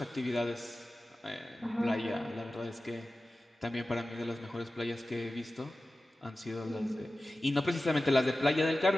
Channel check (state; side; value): normal; both; correlation 0.95